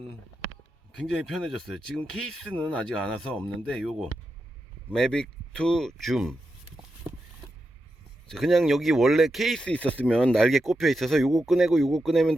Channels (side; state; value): both; normal; correlation 0.88